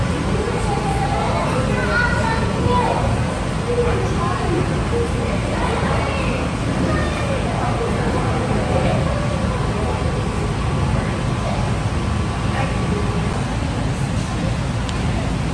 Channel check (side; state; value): both; identical; correlation 1.00